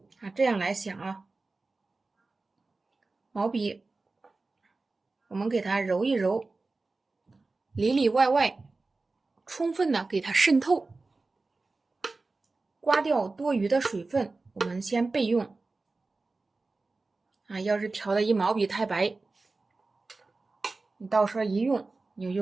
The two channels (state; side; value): quieter; left; 3.6 dB